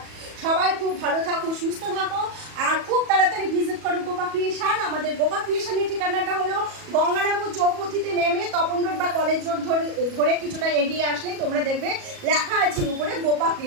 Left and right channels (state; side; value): late; left; 37 ms